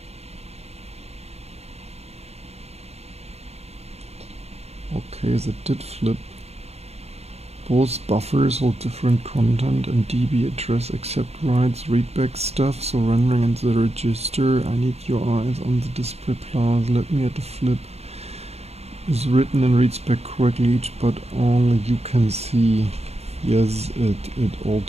Okay, that did flip. Both buffers hold different content and DB address accept writes, readback stuff, so rendering and the register. I need your eyes on the display plus. Let me add a flip. Is written and reads back correctly each, but only you can see. Yes, it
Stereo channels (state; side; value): late; left; 0.31 ms